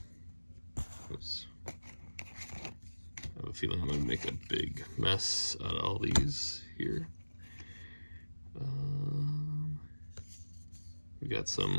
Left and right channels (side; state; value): both; inverted; correlation -1.00